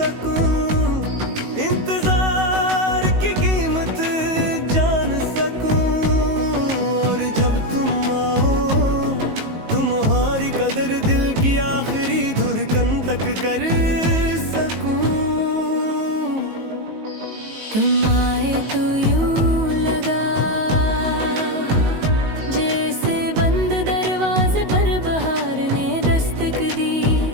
इंतजार की कीमत जान सकूं, और जब तुम आओ तुम्हारी कदर दिल की आखिरी धड़कन तक कर सकूं। तुम आए तो यूं लगा जैसे बंद दरवाजे पर बहार ने दस्तक दी,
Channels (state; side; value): late; left; 19 ms